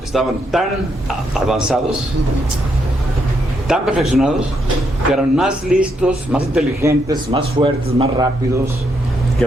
estaban tan avanzados, tan perfeccionados que eran más listos, más inteligentes, más fuertes, más rápidos que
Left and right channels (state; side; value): normal; both; correlation 0.77